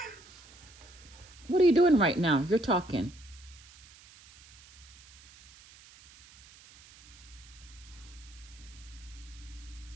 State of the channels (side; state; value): right; noise; hiss, 22 dB below the sound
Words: What are you doing right now? You're talking.